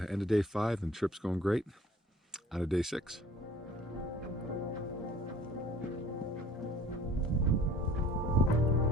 of day 5 and trip's going great. On to day 6.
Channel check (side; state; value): both; normal; correlation 0.50